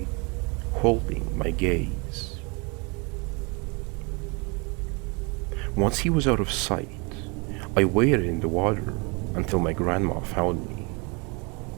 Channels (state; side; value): quieter; left; 30.6 dB